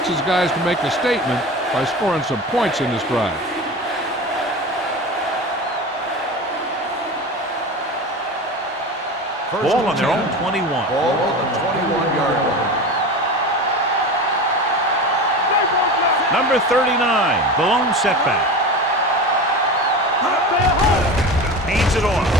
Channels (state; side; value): normal; both; correlation 0.29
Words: his guys to make a statement by scoring some points in this drive. Ball on their own 21. Ball on the 21-yard line. Number 39, the lone setback. Hands it off.